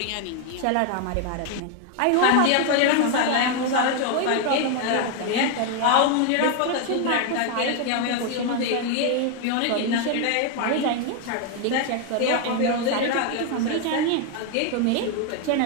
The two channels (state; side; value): different; both; correlation 0.01